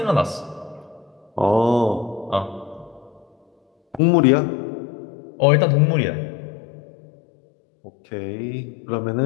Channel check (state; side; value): drops out; right; at 4.0 s